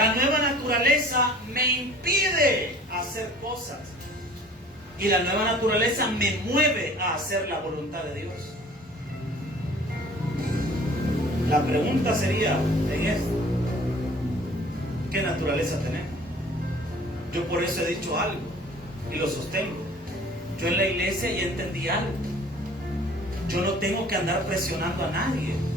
nueva naturaleza me impide hacer cosas. Y la nueva naturaleza me mueve a hacer la voluntad de Dios. La pregunta sería en esto: ¿qué naturaleza tenemos? Yo por eso he dicho algo y lo sostengo. Yo en la iglesia ya entendí algo. Yo no tengo que andar presionando a nadie.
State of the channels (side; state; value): both; normal; correlation 0.49